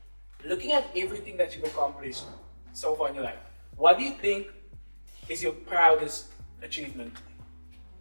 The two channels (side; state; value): both; inverted; correlation -1.00